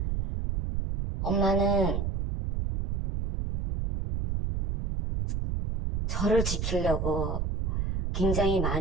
엄마는 저를 지키려고 굉장히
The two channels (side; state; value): right; noise; rumble, 1 dB below the sound